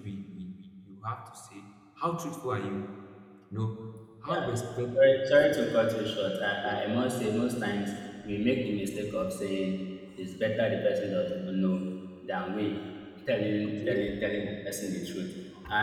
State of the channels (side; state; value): both; identical; correlation 1.00